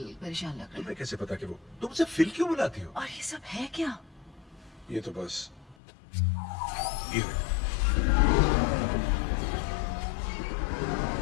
परेशान लग रहा है। तुम्हें कैसे पता कि वो तुम मुझसे फिल क्यों बुलाती हो? और ये सब है क्या? ये तो बस ये है।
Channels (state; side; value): drops out; right; at 5.8 s